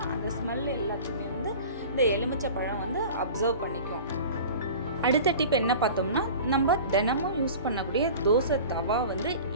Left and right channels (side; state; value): both; inverted; correlation -0.38